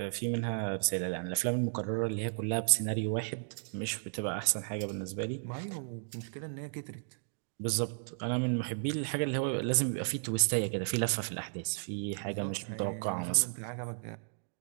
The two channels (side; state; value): left; silent; digital silence